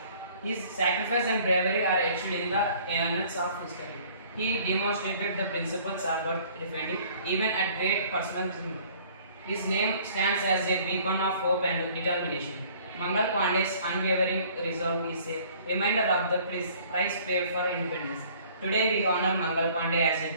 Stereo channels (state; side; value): inverted; both; correlation -0.55